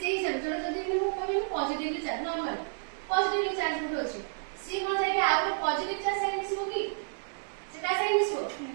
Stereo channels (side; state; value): left; silent; digital silence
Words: हिसाब जोड़ जदी मु कहबे positively charge normal positively charge होतो अछि सी कोन जाय के आउ पॉजिटिव चार्ज संगे मिसिबो की सेटा संगे मिसिबो